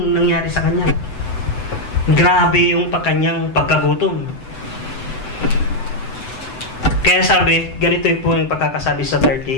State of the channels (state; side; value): late; right; 7.9 ms